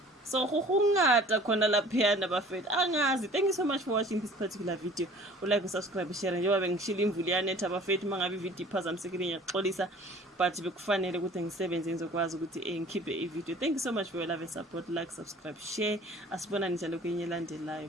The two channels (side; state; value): both; normal; correlation 0.49